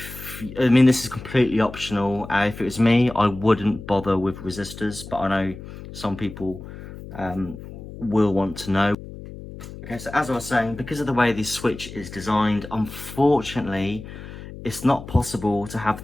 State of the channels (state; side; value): noise; left; hum, 13 dB below the sound